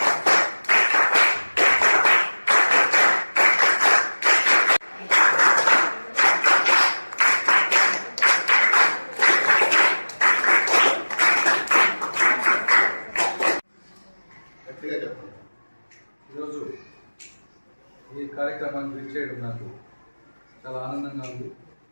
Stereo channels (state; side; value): inverted; both; correlation -1.00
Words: ఈరోజు ఈ కార్యక్రమాన్ని విచ్చేయడం నాకు చాలా ఆనందంగా ఉంది.